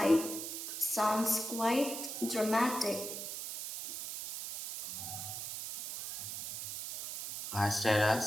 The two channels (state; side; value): noise; right; hiss, 6 dB below the sound